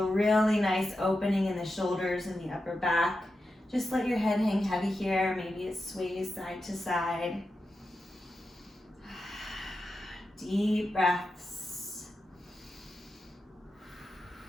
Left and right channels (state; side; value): normal; both; correlation 0.90